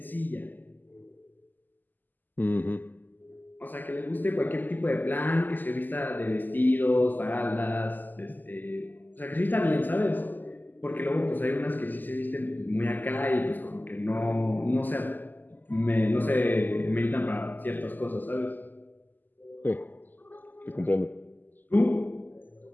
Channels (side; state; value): right; late; 0.087 ms